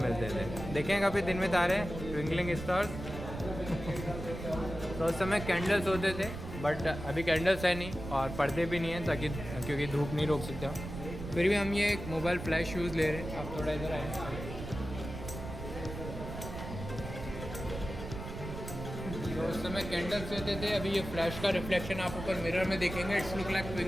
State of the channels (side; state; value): right; noise; rumble, 9 dB below the sound